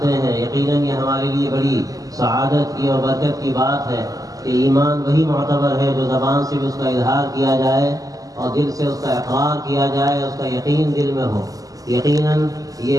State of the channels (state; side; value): late; left; 0.17 ms